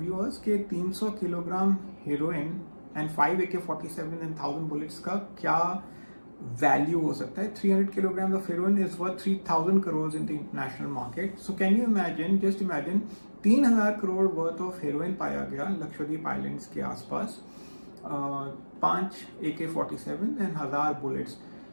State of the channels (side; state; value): both; inverted; correlation -1.00